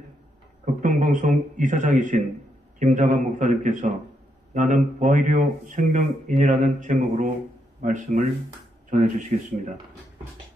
극동방송 이사장이신 김장한 목사님께서 나는 부활이요 생명인이라는 제목으로 말씀을 전해주시겠습니다.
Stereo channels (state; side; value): normal; both; correlation 0.79